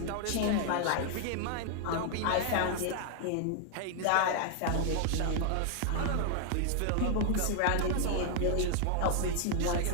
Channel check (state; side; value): different; both; correlation 0.00